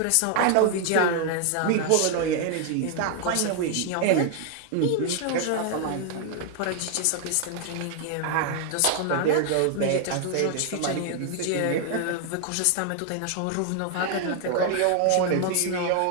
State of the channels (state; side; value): different; both; correlation 0.00